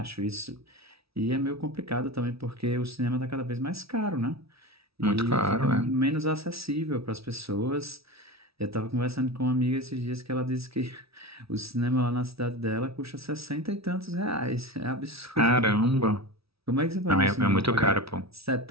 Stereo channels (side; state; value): left; late; 0.76 ms